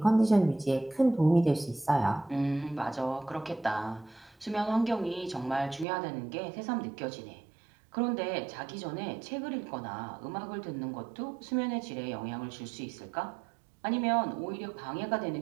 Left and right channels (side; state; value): left; drops out; at 5.9 s